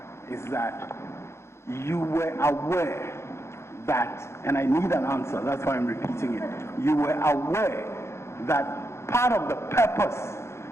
is that you were aware that, and I need an answer, that's why I'm repeating it. You were aware that part of the purpose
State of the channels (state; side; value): late; right; 0.13 ms